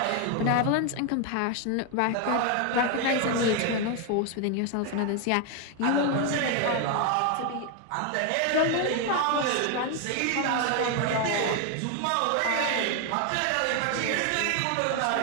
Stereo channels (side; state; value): both; different; correlation 0.01